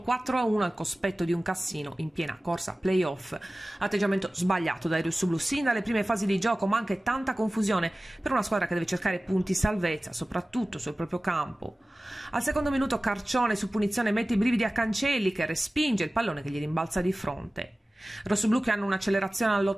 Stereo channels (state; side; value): normal; both; correlation 0.97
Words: 4-1 al cospetto di un Cassino in piena corsa playoff. Atteggiamento sbagliato dai rossoblù sin dalle prime fasi di gioco, ma anche tanta confusione per una squadra che deve cercare punti salvezza, soprattutto sul proprio campo. Al secondo minuto Carcione su punizione mette i brividi a Cancelli, che respinge il pallone che gli rimbalza di fronte. Rossoblù che hanno un'accelerazione